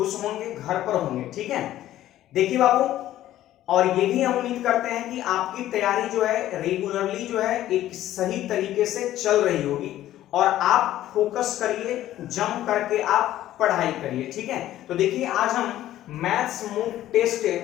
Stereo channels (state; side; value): quieter; right; 13.4 dB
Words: होंगे, घर पर होंगे। ठीक है, देखिए बाबू, और ये भी हम उम्मीद करते हैं कि आपकी तैयारी जो है रेगुलरली जो है एक सही तरीके से चल रही होगी और आप फोकस करिए, जम करके आप पढ़ाई करिए। ठीक है, तो देखिए आज हम मैथ्स मूक टेस्ट